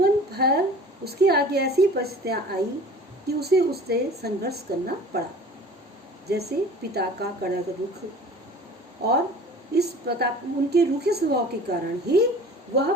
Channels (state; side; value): normal; both; correlation 0.44